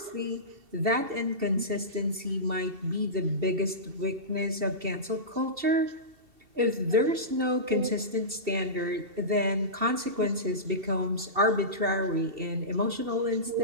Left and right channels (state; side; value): late; left; 2.7 ms